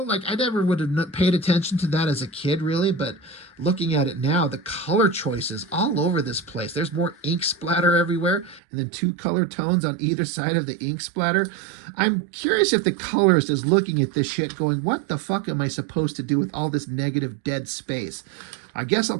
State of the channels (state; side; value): drops out; left; at 8.6 s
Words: Like, I never would have paid attention to that as a kid, really, but looking at it now, the color choices all over this place. There's more ink splatter everywhere, and then 2 color tones on either side of the ink splatter. I'm curious if the colorist is looking at this shit going, what the fuck am I supposed to do with all this negative dead space? I guess I'll